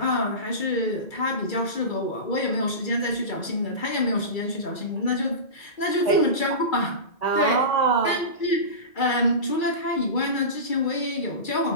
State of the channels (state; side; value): late; right; 2.3 ms